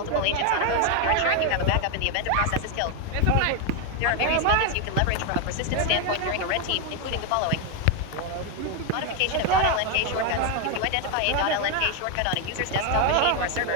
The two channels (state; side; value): different; both; correlation 0.01